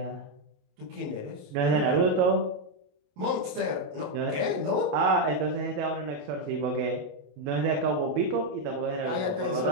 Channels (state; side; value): late; left; 27 ms